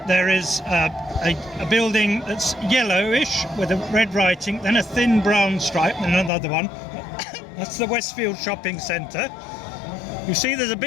there is a building that's yellowish with a red writing, then a thin brown stripe, and another one. That's the Westfield Shopping Centre. You see there's a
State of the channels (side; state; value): right; drops out; at 6.3 s